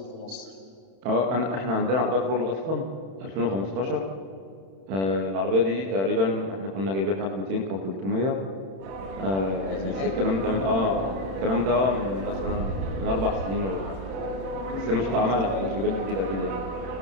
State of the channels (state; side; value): late; left; 31 ms